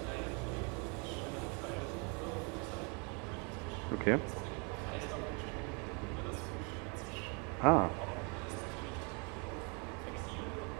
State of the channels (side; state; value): left; quieter; 33.7 dB